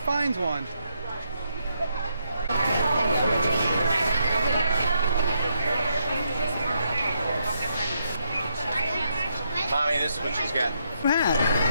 one. Mommy, this is what she's got. Hat.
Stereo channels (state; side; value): inverted; both; correlation -0.78